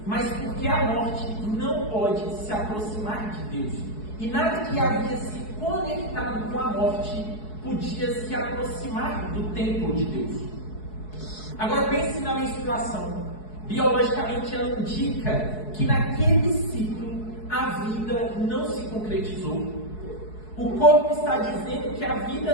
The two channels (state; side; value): late; right; 4.7 ms